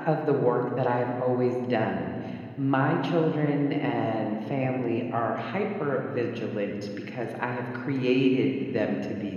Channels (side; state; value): both; identical; correlation 1.00